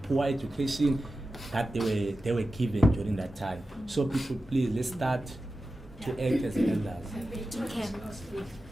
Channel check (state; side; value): normal; both; correlation 0.93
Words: poor education that they were given during that time. So people, please, let's start to act as elders. Okay.